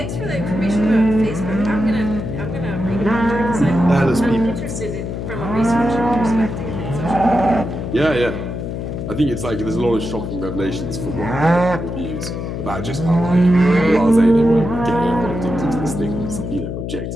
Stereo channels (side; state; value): left; noise; hum, 5 dB below the sound